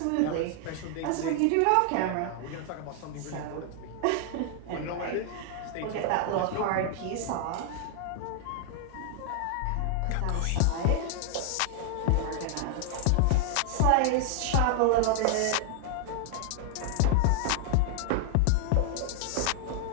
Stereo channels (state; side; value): different; both; correlation 0.00